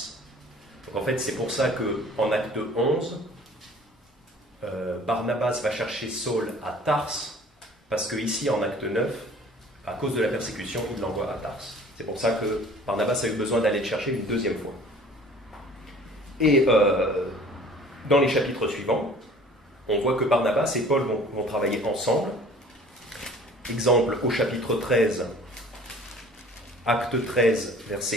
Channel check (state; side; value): normal; both; correlation 0.49